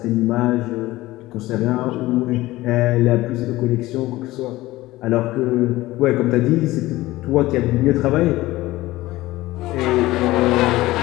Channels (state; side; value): quieter; right; 17.8 dB